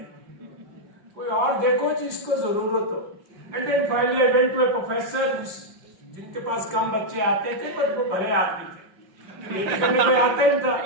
कोई और देखो जिसको जरूरत हो। And then finally I went to a professor जिनके पास कम बच्चे आते थे पर वो बड़े आदमी थे, पीएचडी करने कोई आता ही था।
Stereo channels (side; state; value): left; late; 5.8 ms